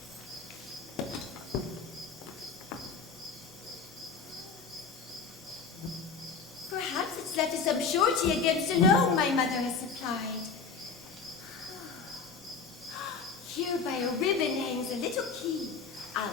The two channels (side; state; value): right; quieter; 5.2 dB